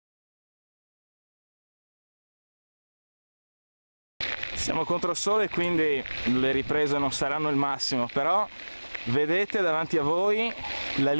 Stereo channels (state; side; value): inverted; both; correlation -1.00